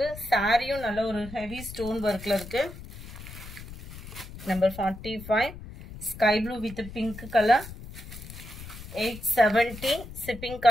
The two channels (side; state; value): left; noise; rumble, 13 dB below the sound